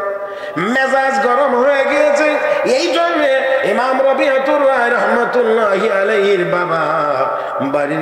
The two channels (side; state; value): both; identical; correlation 1.00